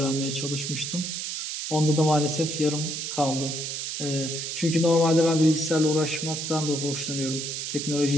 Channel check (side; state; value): right; noise; hiss, 4 dB below the sound